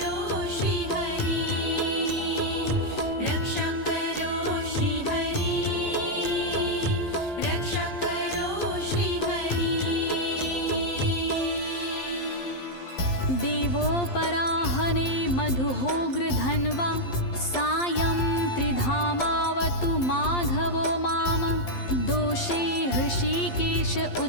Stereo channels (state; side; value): late; right; 12 ms